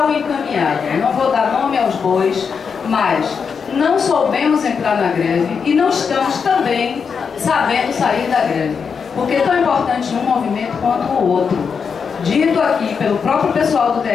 encaminhada. Não vou dar nome aos bois, mas não soubemos entrar na greve e não estamos também sabendo sair da greve. Porque é tão importante um movimento quanto o outro. Dito aqui pelo próprio pessoal do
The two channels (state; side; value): quieter; right; 6.1 dB